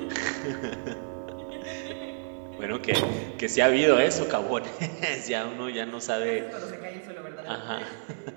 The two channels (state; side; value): silent; left; digital silence